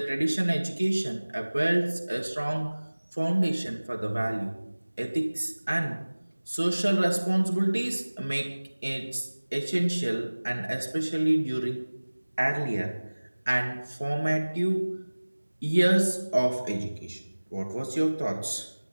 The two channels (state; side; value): inverted; both; correlation -1.00